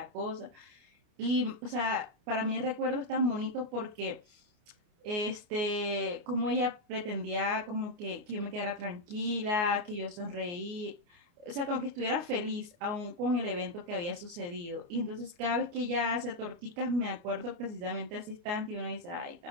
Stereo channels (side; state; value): left; late; 29 ms